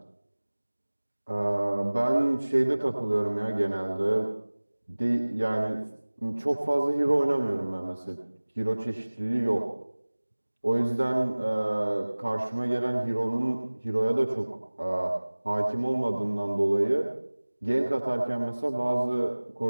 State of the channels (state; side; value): inverted; both; correlation -1.00